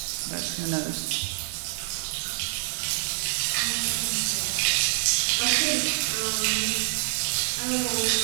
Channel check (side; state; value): left; silent; 60 dB below the other